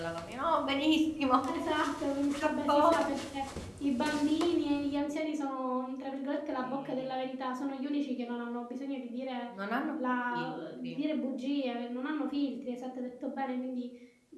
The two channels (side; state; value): both; identical; correlation 1.00